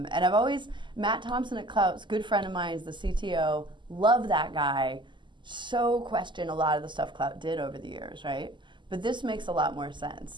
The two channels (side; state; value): left; late; 0.23 ms